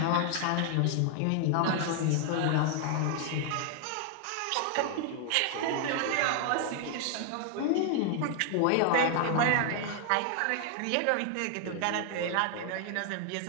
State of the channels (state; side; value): different; both; correlation 0.00